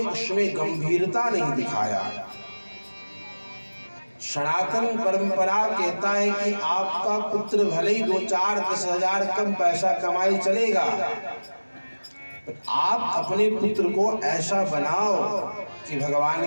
उसमें गंभीरता नहीं दिखाया। सनातन परंपरा कहता है कि आपका पुत्र भले ही 2-4-10,000 कम पैसा कमाए चलेगा, आप अपने पुत्र को ऐसा बनाओ कि भगवान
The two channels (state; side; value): inverted; both; correlation -1.00